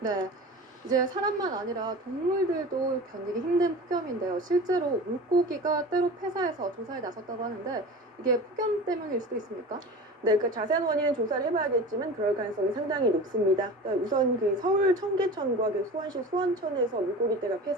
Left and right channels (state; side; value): normal; both; correlation 0.34